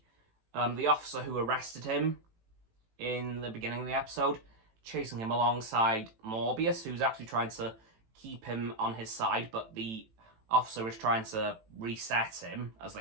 the officer who arrested him in the beginning of the episode chasing him alongside Morbius, who's actually trying to keep him on his side, but the officer is trying to reset him, as they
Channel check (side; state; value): left; late; 18 ms